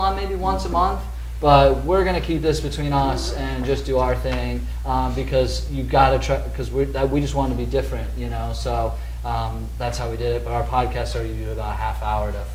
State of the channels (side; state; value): both; identical; correlation 1.00